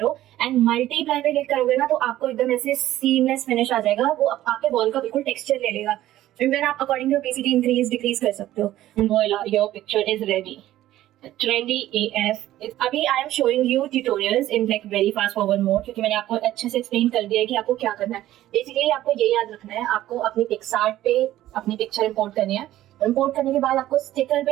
एंड मल्टीप्लाई पे क्लिक करोगे ना तो आपको एकदम ऐसे सीमलेस फिनिश आ जाएगा. वो आपके वॉल का बिल्कुल टेक्सचर ले लेगा. फिर देन आप according to opacity increase decrease कर सकते हो. Voila, your picture is ready. Trendy AF. अभी I am showing you tutorials in like very fast forward mode क्योंकि मैंने आपको अच्छे से एक्सप्लेन कर दिया है कि आपको क्या करना है. बेसिकली आपको ये याद रखना है, आपको अपनी पिक्सार्ट पे अपनी पिक्चर इंपोर्ट करनी है. इंपोर्ट करने के बाद आपको स्टिकर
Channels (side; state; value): left; quieter; 14.1 dB